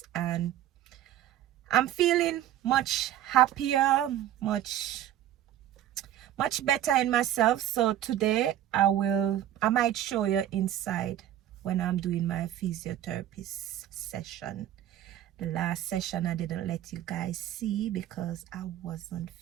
and I'm feeling much happier, much better in myself. So today I might show you inside when I'm doing my physiotherapist session. The last session I didn't let you guys see because I wasn't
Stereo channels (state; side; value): quieter; left; 12.0 dB